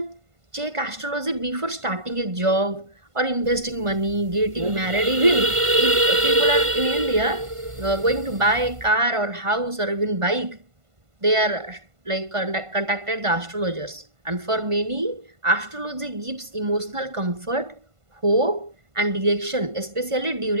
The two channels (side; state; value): left; late; 1.5 ms